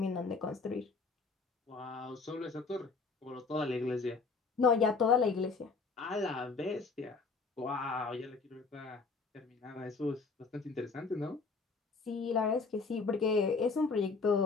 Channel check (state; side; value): quieter; right; 4.4 dB